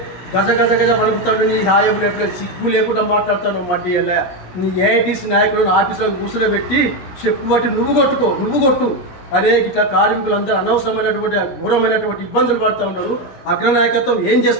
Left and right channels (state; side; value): late; right; 16 ms